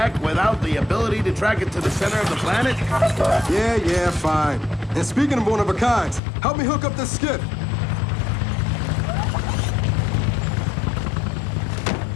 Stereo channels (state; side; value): drops out; right; at 6.2 s